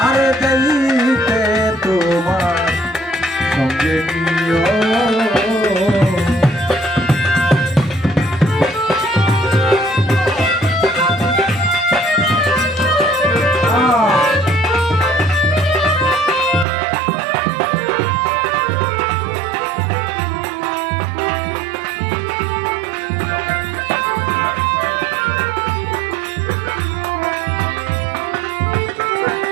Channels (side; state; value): left; drops out; at 16.7 s